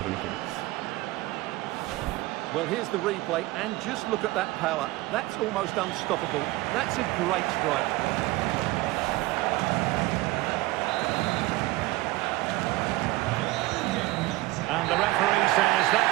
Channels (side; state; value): left; quieter; 19.5 dB